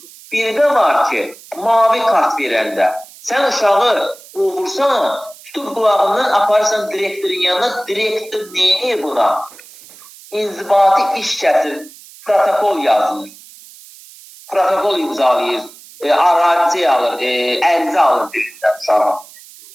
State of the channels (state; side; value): noise; right; hiss, 21 dB below the sound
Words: Bir də var ki, mavi kart verəndə, sən uşağı qovursan, tutub qulağından aparırsan direktorun yanına, direktor neyini buna? İnzibati iş kəsir, protokol yazılır. Protokol imzalayır, arazi alır, ərizə alır deyirlər uşağa.